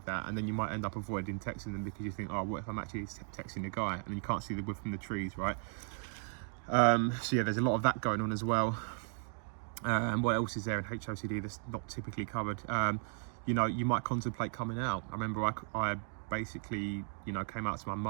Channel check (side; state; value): left; silent; 54 dB below the other